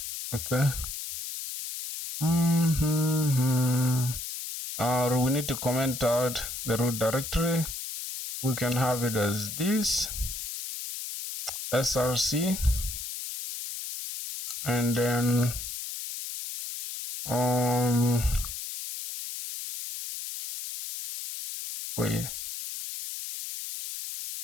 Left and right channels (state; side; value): noise; left; hiss, 7 dB below the sound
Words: Okay. We need to comment out the root directory. We can have it as this src, and then wait,